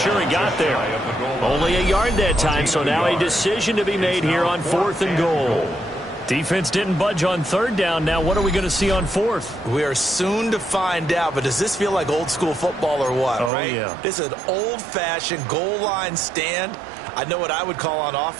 he got there. Only a yard that time, so now a decision to be made here on 4th and goal. Defense didn't budge on 3rd down. Now what are we going to see on 4th? We are soon to find out, but does this feel like old school football or what, right? Yeah. This is an old-fashioned goal line stand. I know what I would call on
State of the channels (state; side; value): drops out; left; at 13.5 s